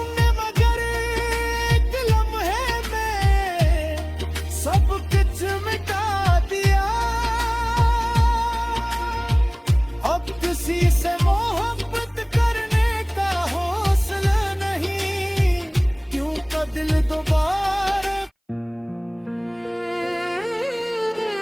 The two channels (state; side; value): identical; both; correlation 1.00